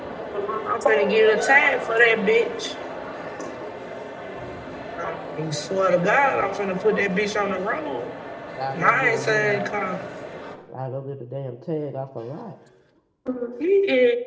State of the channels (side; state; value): both; identical; correlation 1.00